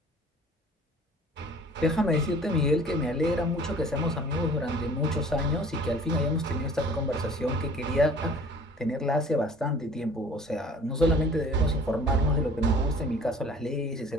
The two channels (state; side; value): normal; both; correlation 0.49